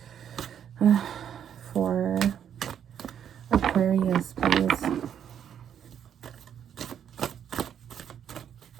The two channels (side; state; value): left; quieter; 8.9 dB